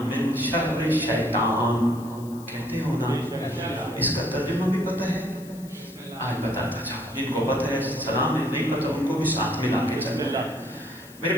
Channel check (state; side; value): noise; left; hiss, 21 dB below the sound